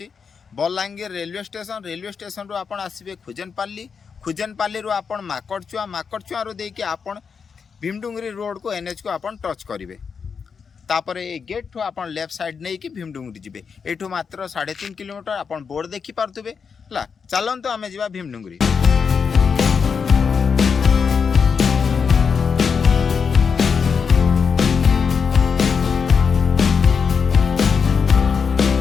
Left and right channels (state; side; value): quieter; right; 6.0 dB